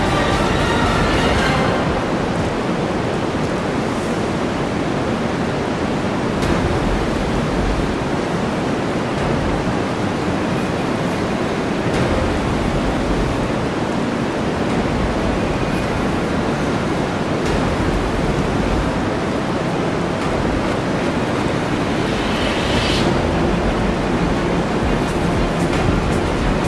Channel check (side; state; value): both; identical; correlation 1.00